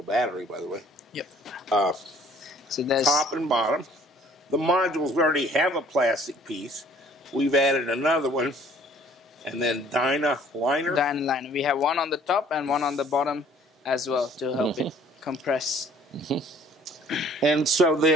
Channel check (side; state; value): both; normal; correlation 0.56